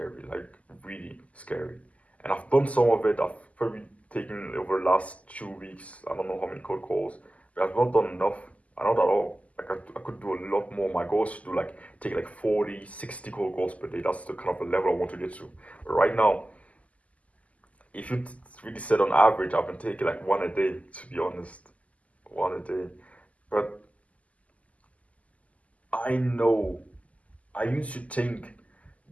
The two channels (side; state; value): right; late; 0.070 ms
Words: like really scary. And I've done some of it. I've probably taken over the last 2 weeks. I don't know how many cold calls, but I've not done enough. I not at all. Like I could do a lot more. My goal is to do like take like 40, 60 cold calls per day. That's the kind of the level I want to get to. But right now, if you really said on average, I've been taking like one a day, to be honest. One a day. But I know, I used to think